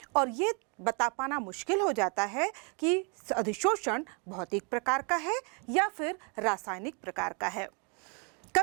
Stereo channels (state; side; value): quieter; left; 35.4 dB